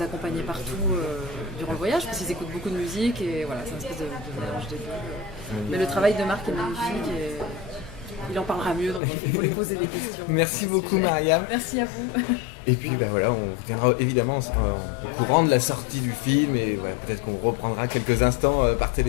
accompagnait partout durant le voyage, parce qu'ils écoutent beaucoup de musique et voilà, c'est un espèce de mélange des deux. Mais le travail de Marc est magnifique et il en parlera mieux, donc il faut lui poser des questions. Merci beaucoup Mariam. Merci à vous. Et puis voilà, on tiendra évidemment au courant de la sortie du film et peut-être qu'on reprendra quelques instants par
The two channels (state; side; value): drops out; right; at 9.0 s